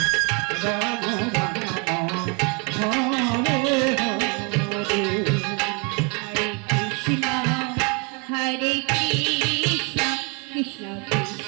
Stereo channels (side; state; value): left; quieter; 32.1 dB